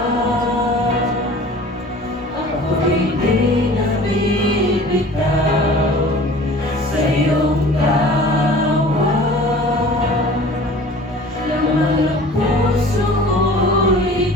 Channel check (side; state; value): both; normal; correlation 0.44